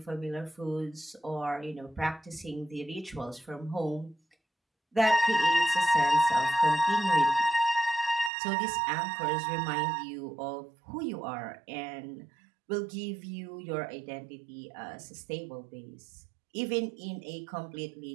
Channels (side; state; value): left; drops out; at 8.3 s